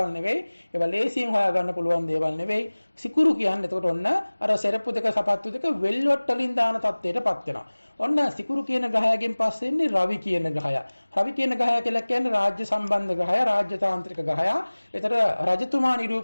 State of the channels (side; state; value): both; inverted; correlation -1.00